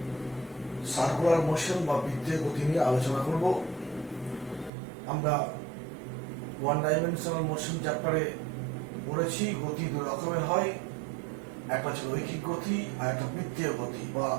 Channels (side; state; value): left; drops out; at 4.7 s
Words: সার্কুলার মোশন বা বৃত্তীয় গতি নিয়ে আলোচনা করব। আমরা ওয়ান ডাইমেনশনাল মোশন চ্যাপ্টারে পড়েছি গতি দুই রকমের হয়, একটা হচ্ছে রৈখিক গতি আর একটা বৃত্তীয় গতি বা